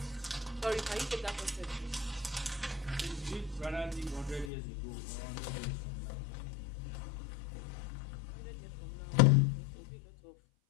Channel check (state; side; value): drops out; right; at 4.5 s